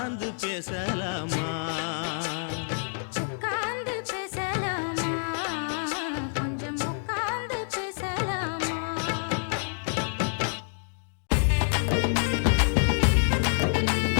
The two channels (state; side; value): silent; right; digital silence